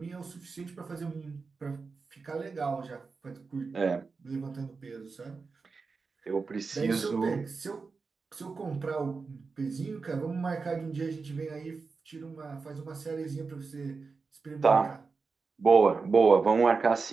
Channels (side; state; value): left; quieter; 4.6 dB